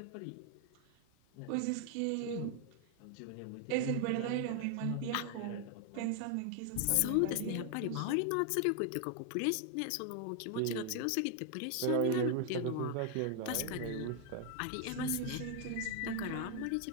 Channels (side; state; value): both; different; correlation 0.00